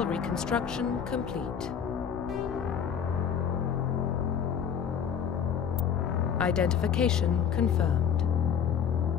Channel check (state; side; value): quieter; right; 7.7 dB